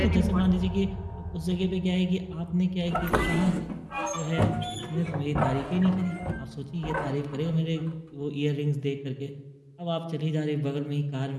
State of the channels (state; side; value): identical; both; correlation 1.00